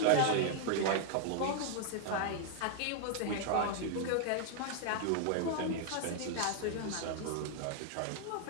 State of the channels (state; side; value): different; both; correlation 0.00